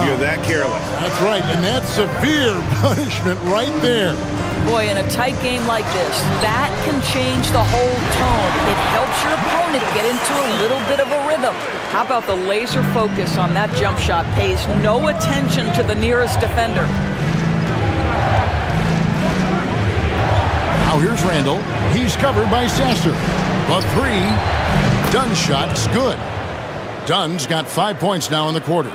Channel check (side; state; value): both; identical; correlation 1.00